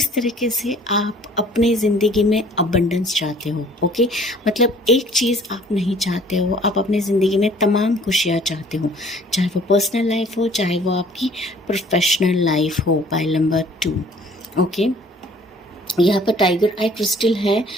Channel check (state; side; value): normal; both; correlation 0.54